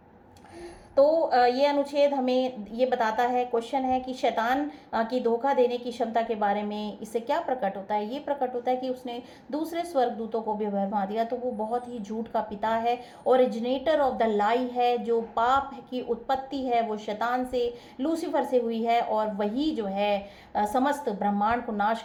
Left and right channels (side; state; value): both; identical; correlation 1.00